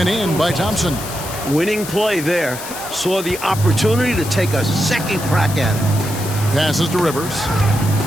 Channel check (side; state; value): left; noise; hiss, 10 dB below the sound